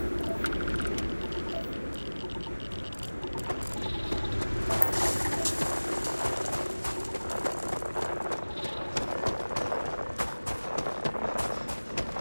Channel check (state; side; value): inverted; both; correlation -1.00